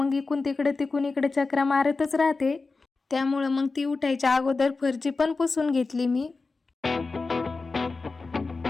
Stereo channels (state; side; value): quieter; right; 3.9 dB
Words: इकडून तिकडे चक्रा मारतच राहते, त्यामुळे मग ती उठायच्या अगोदर फरची पण पुसून घेतली मी।